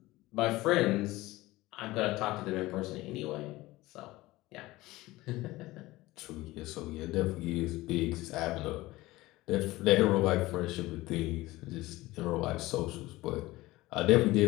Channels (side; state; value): right; quieter; 18.8 dB